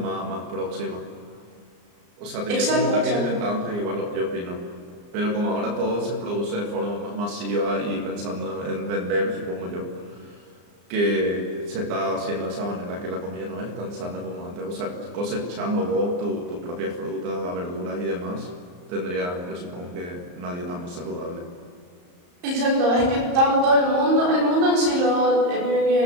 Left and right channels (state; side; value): late; left; 34 ms